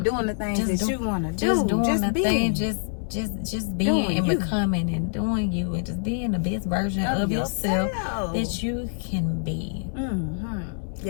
doing the things Just that you want to do. Just doing the being. thing, just being Doing and you. becoming and doing you and just being the best version of yourself that you can be. Mm-hmm.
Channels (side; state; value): right; silent; digital silence